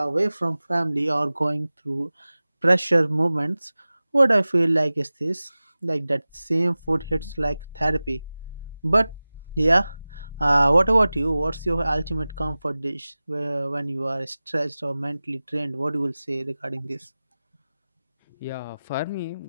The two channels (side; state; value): both; inverted; correlation -0.97